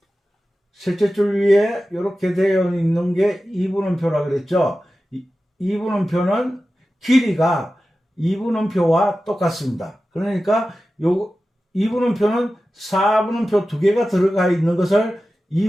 셋째 줄 위에 이렇게 되어 있는 게 2분음표라 그랬죠. 2분음표는 길이가 2분음표와 똑같습니다. 그러니까 요 2분음표는 4분음표 2개가 들어가 있는 것을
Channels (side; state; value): both; normal; correlation 0.94